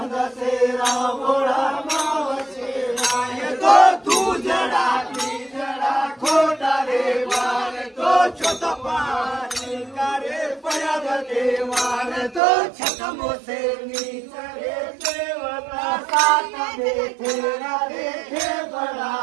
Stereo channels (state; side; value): drops out; left; at 12.4 s